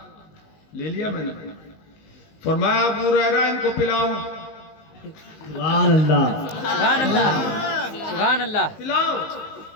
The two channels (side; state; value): right; late; 19 ms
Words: لے لیا میں نے۔ فرمایا ابو ہریرہ ان کو پلاؤ، سبحان اللہ، سبحان اللہ، سبحان اللہ۔ پلاؤ۔